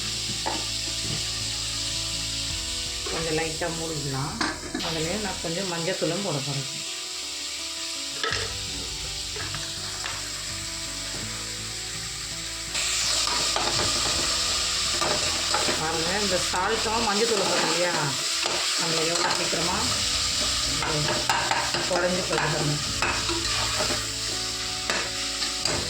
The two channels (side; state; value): both; identical; correlation 1.00